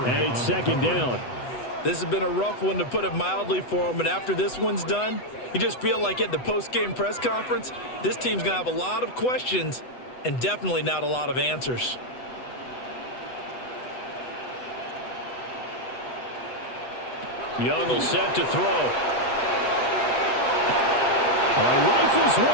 it's second down. This has been a rough one, to put it mildly, for him. And after this one's done, you just feel like at the post-game press conference, this team's going to have a lot of questions and definitely not a lot of answers. Young will set to throw. Oh, he rifles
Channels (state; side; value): late; right; 8.1 ms